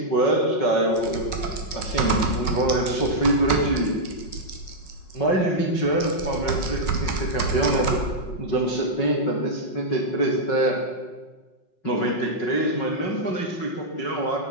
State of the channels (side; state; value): right; late; 5.4 ms